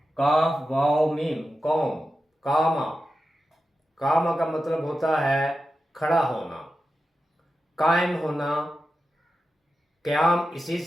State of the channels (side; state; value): both; normal; correlation 0.91